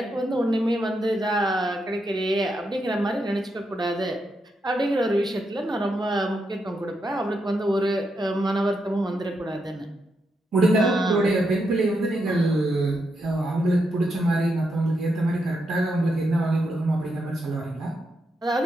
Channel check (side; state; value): both; normal; correlation 0.83